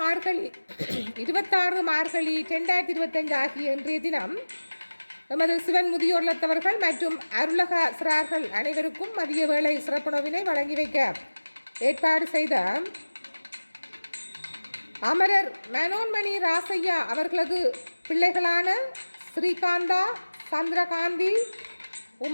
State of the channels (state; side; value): inverted; both; correlation -1.00